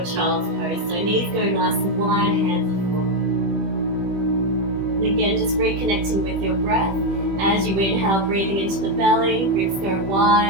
child's pose. So knees go nice and wide, hands are forward. And again, just reconnecting with your breath. As you inhale, breathing into the belly, ribs go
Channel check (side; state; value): left; late; 21 ms